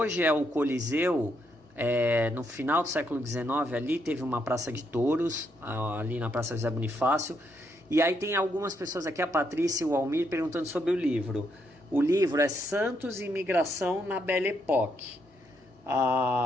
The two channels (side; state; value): both; normal; correlation 0.77